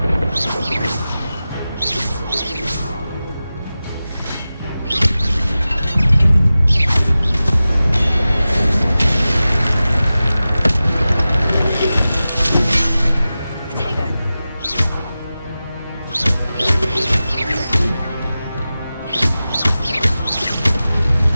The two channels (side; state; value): both; inverted; correlation -0.95